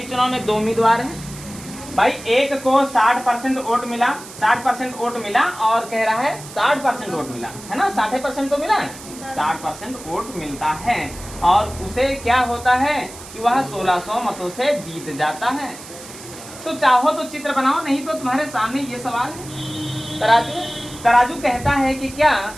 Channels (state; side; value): noise; right; hiss, 15 dB below the sound